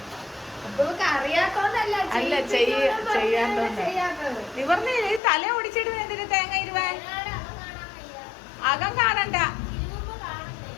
അറിയാത്തോണ്ടല്ല, അല്ല ചെയ്യാത്തോണ്ട് നിവർന്നില്ലേ. തല ഓടിച്ചിടുന്ന എന്തിന് തേങ്ങ ഇരുവാൻ? അകം കാണണ്ട.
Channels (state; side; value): drops out; right; at 5.2 s